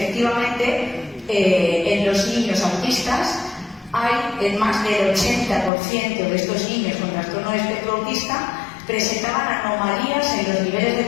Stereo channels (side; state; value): right; drops out; at 5.7 s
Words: en los niños autistas hay en más del 80% de estos niños con trastorno de espectro autista presentaban anomalías en los niveles de